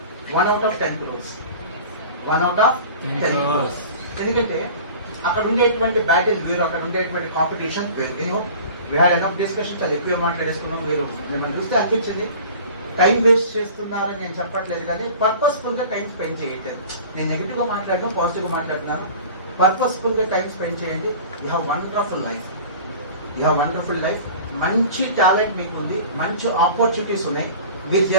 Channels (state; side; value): inverted; both; correlation -0.41